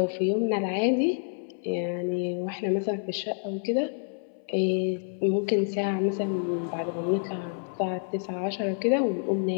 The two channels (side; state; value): right; silent; 59 dB below the other